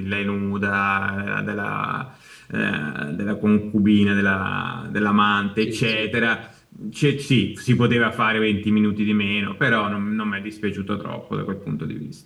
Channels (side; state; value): both; identical; correlation 1.00